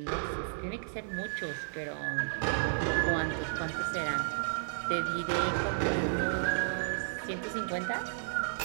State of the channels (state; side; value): silent; left; 56 dB below the other